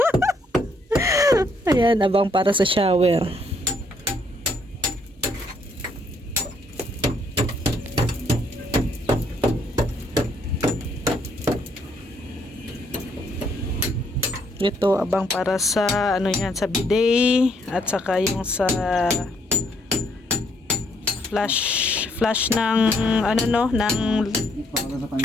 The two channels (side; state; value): both; normal; correlation 0.70